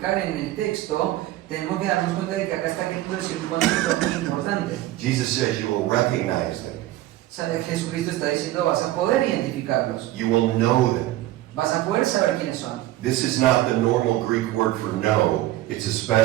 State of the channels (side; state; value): left; quieter; 15.5 dB